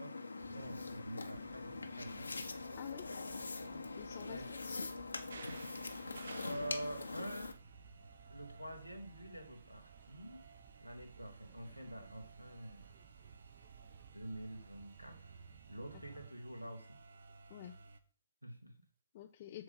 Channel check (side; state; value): both; inverted; correlation -0.88